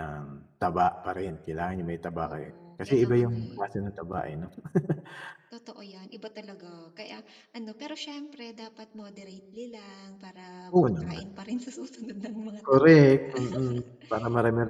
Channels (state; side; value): identical; both; correlation 1.00